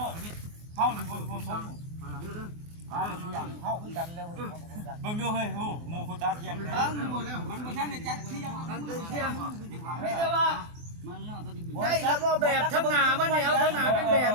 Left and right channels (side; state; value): left; late; 24 ms